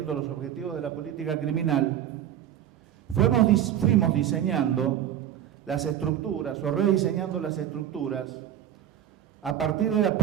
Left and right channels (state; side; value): quieter; left; 10.7 dB